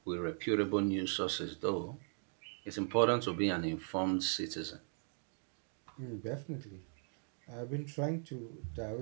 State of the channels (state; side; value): silent; left; 52 dB below the other